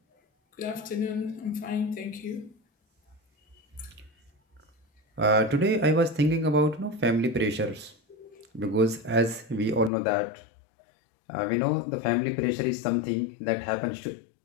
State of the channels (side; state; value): right; drops out; at 9.9 s